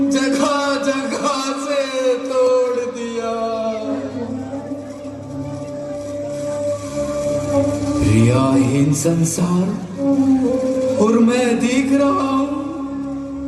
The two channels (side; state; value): both; identical; correlation 1.00